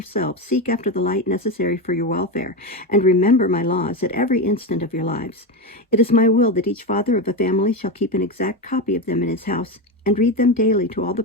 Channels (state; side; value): normal; both; correlation 0.15